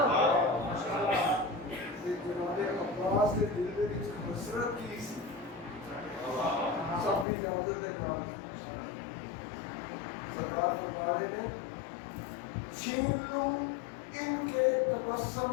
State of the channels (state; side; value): drops out; right; at 7.2 s